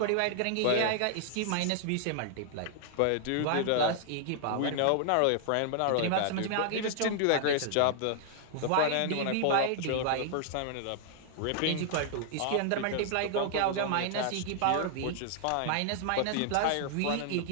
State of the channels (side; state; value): both; different; correlation -0.01